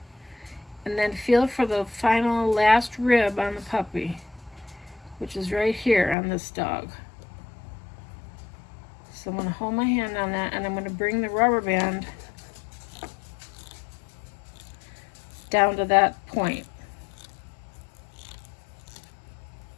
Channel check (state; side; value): drops out; right; at 6.2 s